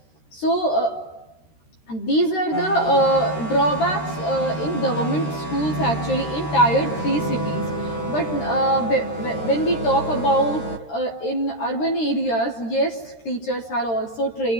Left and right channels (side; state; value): right; late; 13 ms